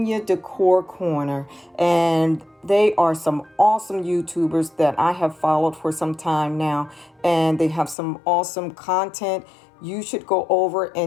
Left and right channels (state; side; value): drops out; right; at 8.0 s